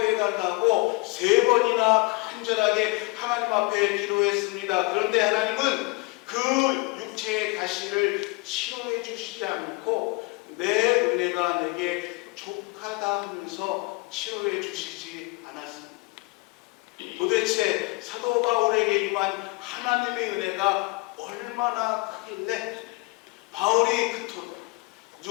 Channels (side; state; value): right; quieter; 25.7 dB